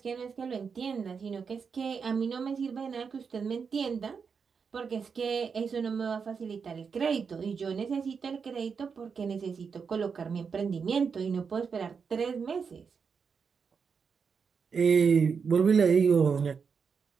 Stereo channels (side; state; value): left; quieter; 5.9 dB